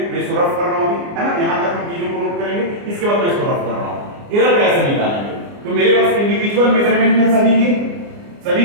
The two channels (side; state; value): left; late; 29 ms